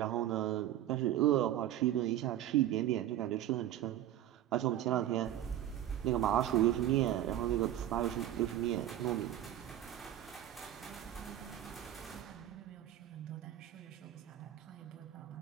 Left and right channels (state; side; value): quieter; left; 12.4 dB